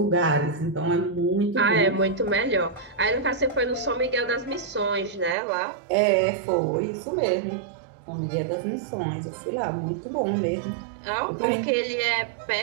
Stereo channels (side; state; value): left; drops out; at 5.4 s